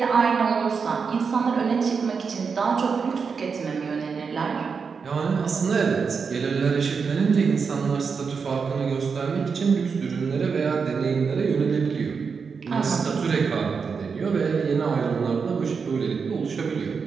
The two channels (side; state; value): left; quieter; 5.6 dB